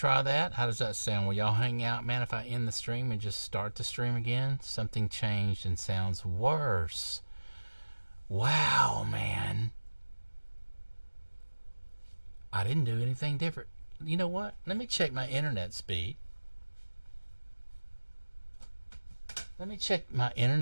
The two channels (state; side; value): inverted; both; correlation -1.00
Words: that? How does that sound? Will y'all hang out, man, if I end the stream and just start the stream again? Something changed and sounds worse. Wow, man. I didn't do anything different. You know what? Let me check my internet speed. Let me check my